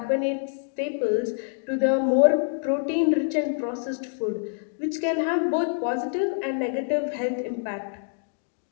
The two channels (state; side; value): silent; right; digital silence